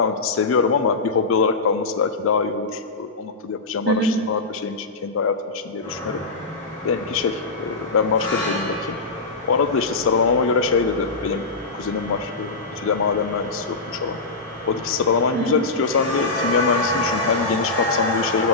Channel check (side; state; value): right; quieter; 3.7 dB